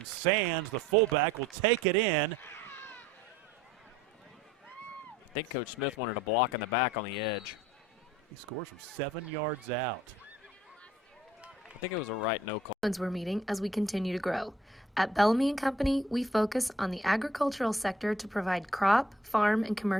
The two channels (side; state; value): both; normal; correlation 0.58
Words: Sands, the fullback, will take it in. I think Coach Smith wanted a block in the back on the edge. He scores from 7 yards out. I think it was a right no call. We're meeting as we continue to grow. At Bellamy & Company, we focus on the agricultural sector to provide crop, farm, and